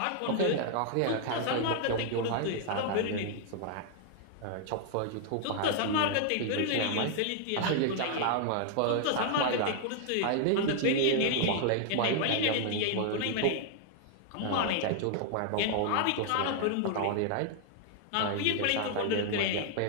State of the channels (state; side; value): different; both; correlation 0.00